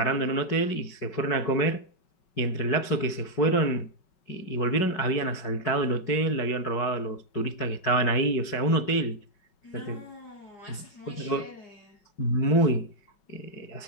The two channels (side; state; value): right; late; 5.3 ms